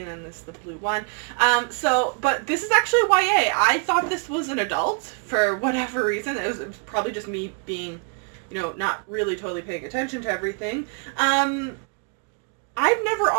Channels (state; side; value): quieter; left; 38.4 dB